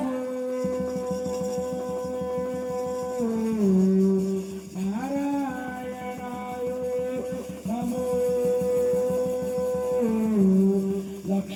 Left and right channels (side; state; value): both; identical; correlation 1.00